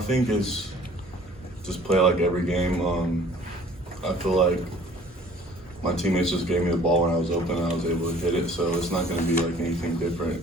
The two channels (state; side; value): normal; both; correlation 0.52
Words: think it's just play like every game. I feel like my teammates just gave me the ball when I was open and I was able to hit it, so it's not going to be like anything different.